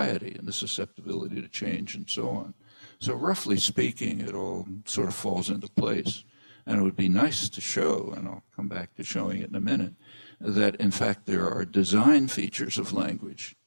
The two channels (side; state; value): both; inverted; correlation -1.00